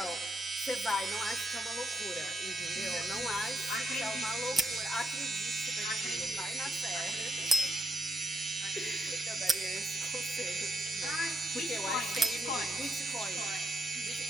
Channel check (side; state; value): both; normal; correlation 0.78